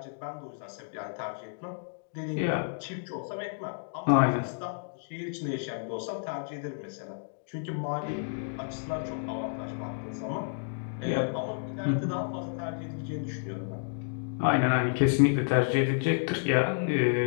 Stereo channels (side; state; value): right; silent; digital silence